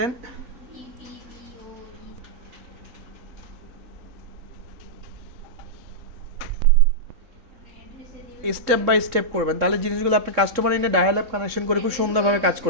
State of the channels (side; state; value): left; late; 3.7 ms